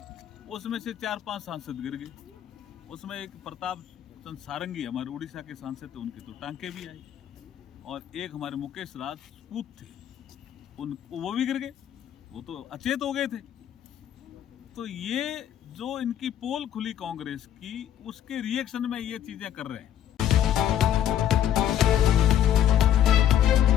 उसमें से 4-5 सांसद गिर गए। उसमें एक प्रताप चंद सारंगी हमारे उड़ीसा के सांसद थे, उनके तो टांके भी आई, और एक हमारे मुकेश राजपूत थे, वो भी गिर गए, वो तो अचेत हो गए थे। तो ये जो इनकी पोल खुली कांग्रेस की, उसके रिएक्शन में ये चीजें कर रहे हैं।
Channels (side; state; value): right; quieter; 10.7 dB